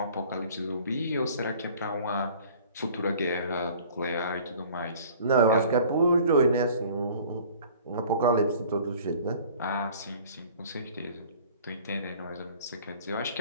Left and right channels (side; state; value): both; inverted; correlation -0.49